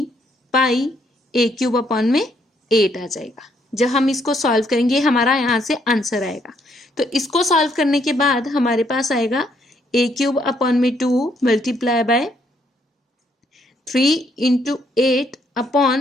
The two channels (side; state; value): both; normal; correlation 0.71